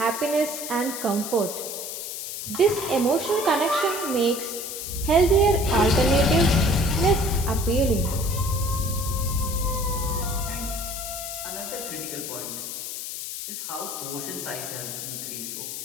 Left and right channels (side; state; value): left; noise; hiss, 6 dB below the sound